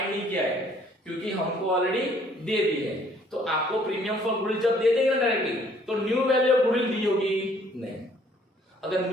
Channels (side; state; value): both; normal; correlation 0.61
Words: नहीं किया है क्योंकि हमको ऑलरेडी दे दी है। तो आपको प्रीमियम फॉर गुडविल जब दे देंगे ना डायरेक्टली, तो न्यू वैल्यू ऑफ गुडविल दी होगी नहीं। अगर